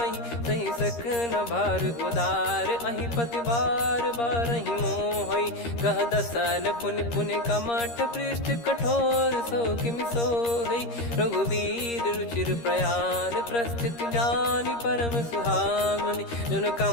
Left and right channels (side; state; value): right; late; 13 ms